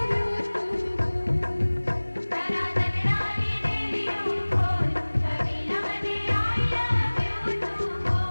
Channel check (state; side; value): inverted; both; correlation -1.00